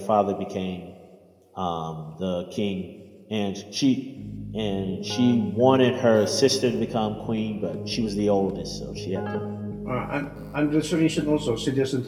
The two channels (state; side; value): identical; both; correlation 1.00